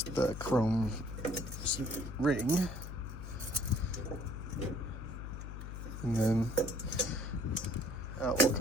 the chrome ring. And then out will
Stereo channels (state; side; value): noise; left; hum, 8 dB below the sound